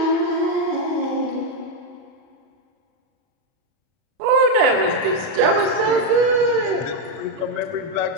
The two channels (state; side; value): late; left; 31 ms